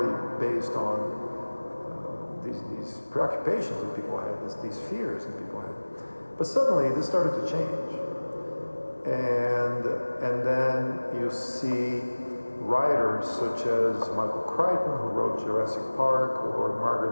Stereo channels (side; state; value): both; inverted; correlation -1.00